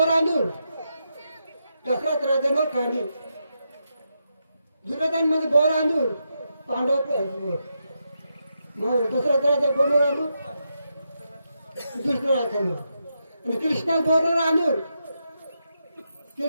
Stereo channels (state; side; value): inverted; both; correlation -0.84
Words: दशरथ राजांवर कांडी दुर्योधन म्हणजे बोरांदूर पांडव दशरथ राजा बोरांदूर दुसरं राजांवर आणि कृष्णा बोरांदूर